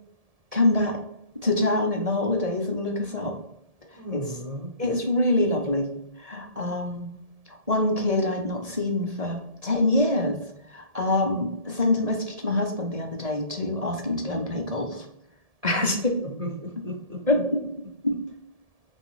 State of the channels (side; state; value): left; late; 1.7 ms